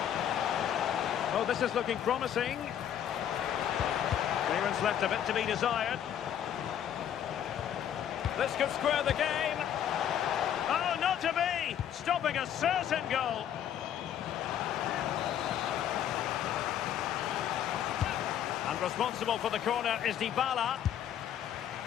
Oh, this is looking promising. Clearance left a bit to be desired. This could square the game. Oh, not to be! Stopping a certain goal. And responsible for the corner is Dybala.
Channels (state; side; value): quieter; right; 9.9 dB